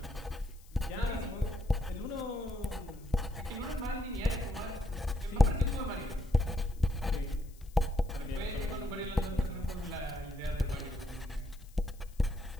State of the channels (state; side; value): noise; left; hiss, 26 dB below the sound